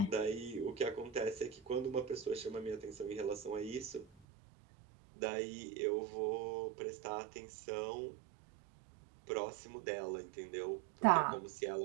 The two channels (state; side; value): drops out; left; at 4.0 s